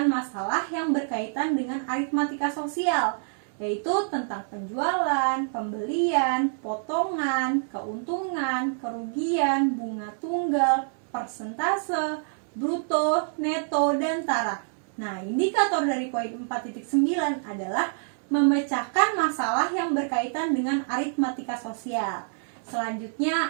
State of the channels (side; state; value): left; silent; digital silence